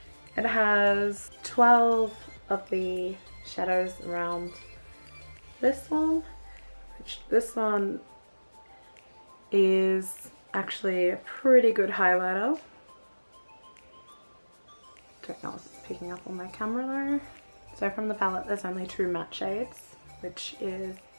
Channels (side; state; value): both; inverted; correlation -1.00